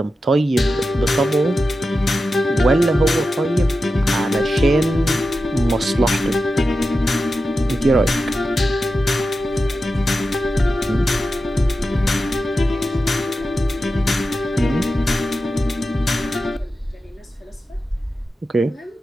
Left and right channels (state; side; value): normal; both; correlation 0.91